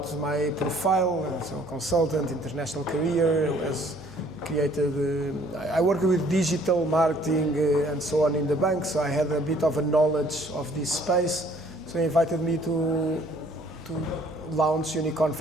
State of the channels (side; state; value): right; noise; hum, 22 dB below the sound